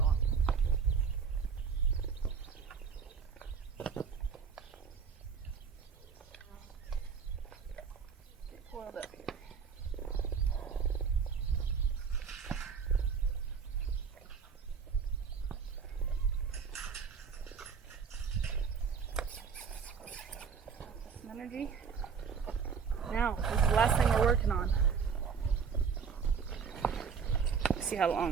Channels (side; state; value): left; quieter; 6.3 dB